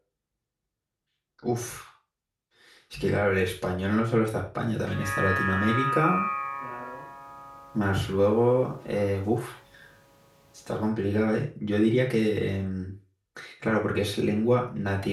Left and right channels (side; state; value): both; identical; correlation 1.00